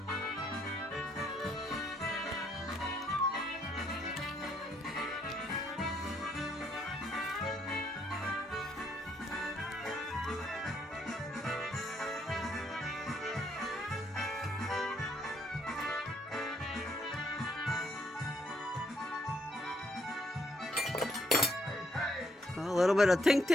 A little bit of tink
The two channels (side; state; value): both; normal; correlation 0.71